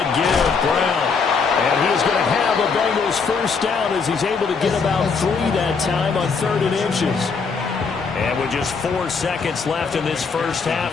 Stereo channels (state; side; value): quieter; right; 5.2 dB